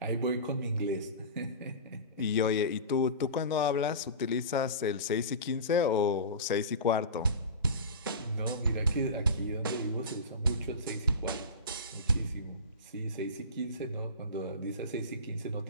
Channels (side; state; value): both; inverted; correlation -0.30